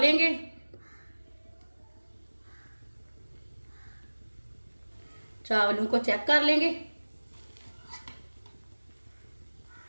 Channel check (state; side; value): inverted; both; correlation -1.00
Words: चावलों को चेक कर लेंगे।